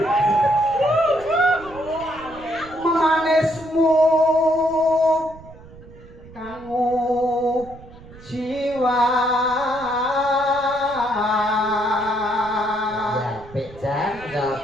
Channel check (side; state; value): right; noise; rumble, 19 dB below the sound